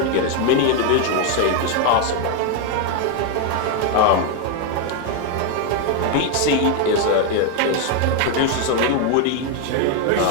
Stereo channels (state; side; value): different; both; correlation 0.01